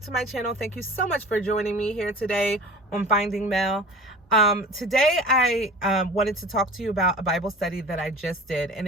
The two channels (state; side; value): normal; both; correlation 0.40